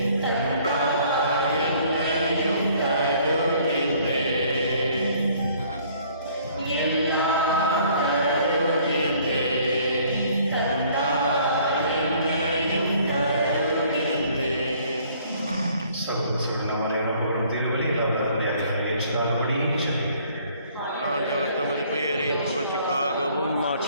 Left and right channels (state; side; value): inverted; both; correlation -0.59